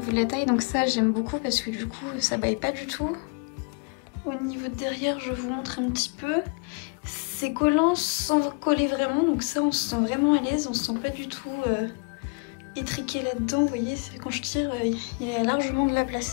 de la taille, donc ça j'aime beaucoup parce que du coup ça baille pas du tout. Au niveau de derrière, je vous montre un petit peu. C'est collant sans coller vraiment, donc ça on se sent vraiment à l'aise, on se sent pas du tout... étriqué là-dedans, vous voyez, quand je tire, il y a largement de la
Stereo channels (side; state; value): right; quieter; 36.0 dB